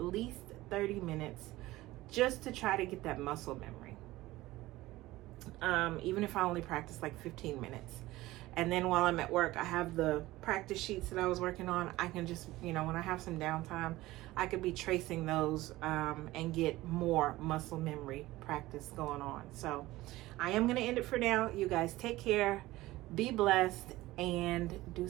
30 minutes just to try to get that muscle memory. Even if I only practice like 15 minutes. And then while I'm at work, I have the practice sheets that I was working on. I can just, you know, when I have some downtime, I could be tracing those and get more muscle memory practice going on. So I am going to end it for now. You guys take care, be blessed, and do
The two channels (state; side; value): quieter; left; 17.9 dB